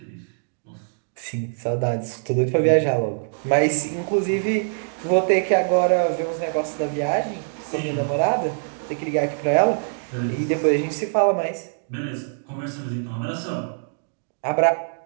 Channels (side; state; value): left; silent; digital silence